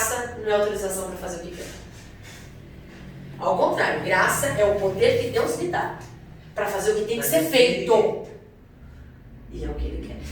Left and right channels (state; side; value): identical; both; correlation 1.00